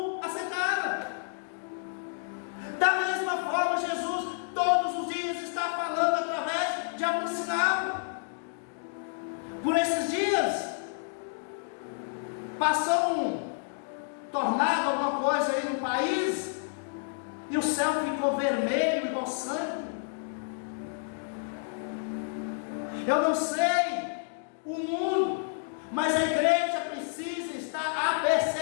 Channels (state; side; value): silent; right; digital silence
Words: aceitaram. Da mesma forma, Jesus todos os dias está falando através de algum sinal. Por esses dias passou um tornado, alguma coisa aí no país, e o céu ficou vermelho igual sangue. Eu não sei o mundo, mas a igreja precisa estar